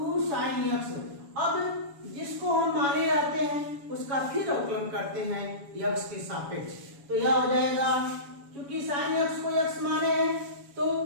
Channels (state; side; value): late; left; 7.1 ms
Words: sin x। अब जिसको हम माने रहते हैं उसका फिर अवकलन करते हैं x के सापेक्ष। तो यह हो जाएगा क्योंकि sin x को x माने हैं तो